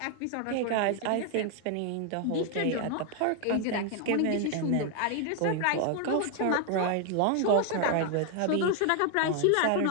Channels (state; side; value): different; both; correlation 0.00